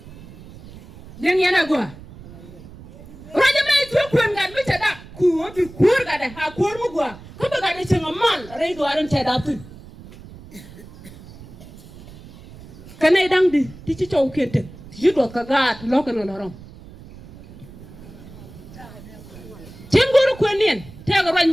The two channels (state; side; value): noise; right; rumble, 18 dB below the sound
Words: Deng yana gua. Raja mai tu kuen gan mi tada ku bi kur ga da ha kur mu gua. Ko ba ga da cin mal rai do aran tada tu. Kanai dang di ti ci chow kete. Ti do ka ga lo ka no lorom. Cin guru kuen nien te ga raj